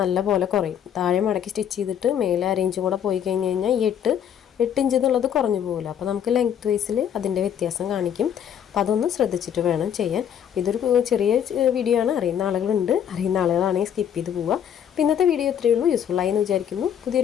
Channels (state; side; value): quieter; right; 9.0 dB